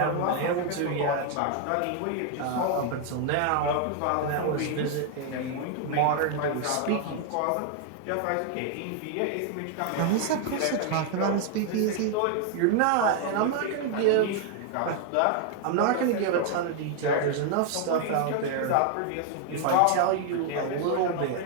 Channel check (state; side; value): different; both; correlation 0.00